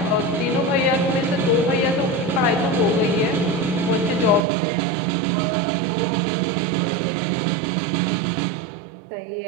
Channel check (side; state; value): left; drops out; at 4.5 s